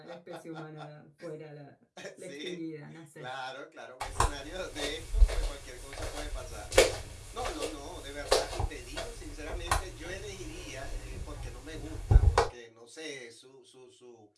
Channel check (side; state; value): both; identical; correlation 1.00